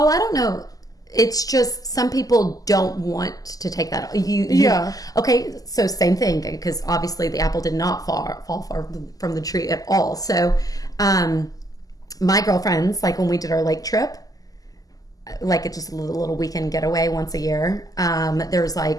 I don't know. It's just some people don't want to take that. Okay, so same thing because obviously the apple did not fall far from the tree at all. So, my girlfriends, like when we did our lake trip, like it's just a little weekend getaway once a year. There was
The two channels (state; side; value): late; right; 0.17 ms